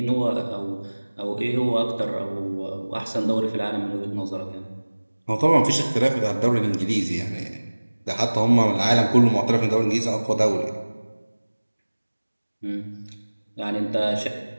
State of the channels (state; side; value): inverted; both; correlation -1.00